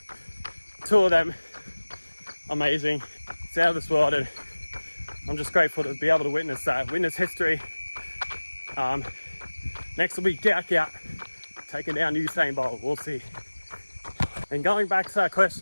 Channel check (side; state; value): both; inverted; correlation -1.00